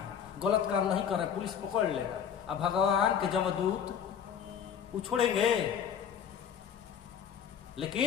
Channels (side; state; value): right; quieter; 8.1 dB